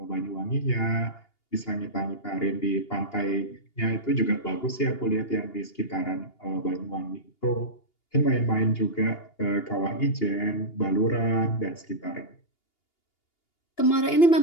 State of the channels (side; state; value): right; late; 2.8 ms